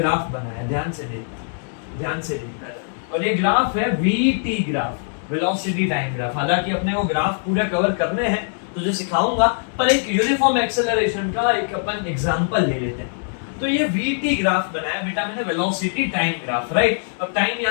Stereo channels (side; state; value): right; silent; 64 dB below the other